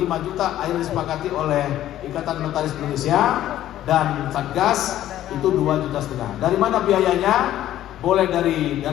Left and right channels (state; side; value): quieter; right; 12.8 dB